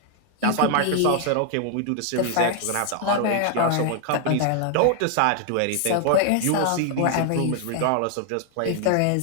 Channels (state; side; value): different; both; correlation 0.00